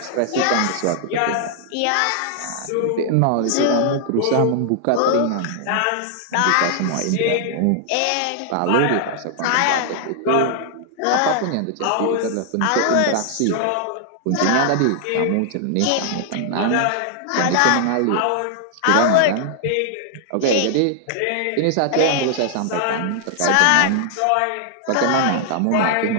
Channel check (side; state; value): both; different; correlation 0.00